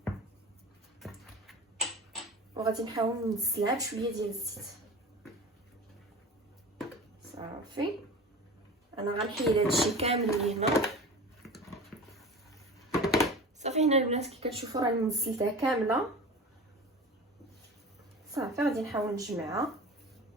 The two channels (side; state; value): both; normal; correlation 0.35